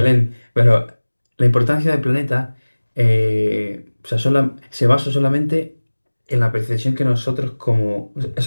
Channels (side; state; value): both; inverted; correlation -1.00